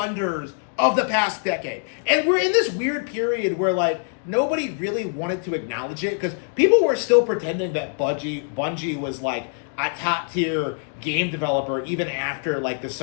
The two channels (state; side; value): silent; right; 59 dB below the other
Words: of the past decade. And we're in this weird period where, like, nobody really wanted to acknowledge it, because people were still pretending that Bungie was, like, a top-tier game developer even after, like, the